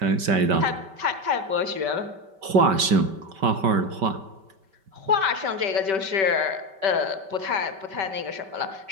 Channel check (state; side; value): late; left; 5.2 ms